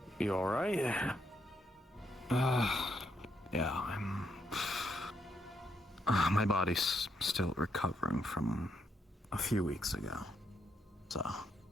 You alright? Yeah, I'm... my body's still recovering from a few weeks ago, so...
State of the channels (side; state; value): both; normal; correlation 0.77